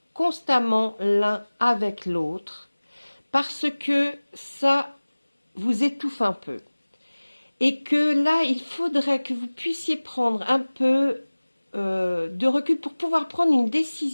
constamment l'un avec l'autre, parce que ça vous étouffe un peu. Et que là, il faudrait que vous puissiez prendre un peu de recul pour pouvoir prendre une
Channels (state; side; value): inverted; both; correlation -1.00